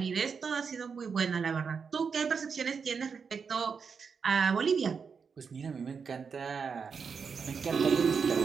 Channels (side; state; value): left; quieter; 5.8 dB